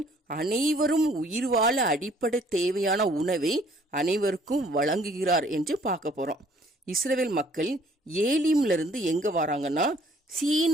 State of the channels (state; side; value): normal; both; correlation 0.59